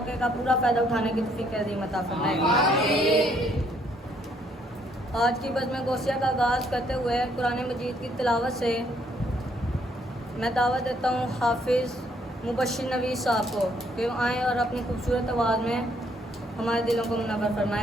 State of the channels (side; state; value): both; normal; correlation 0.68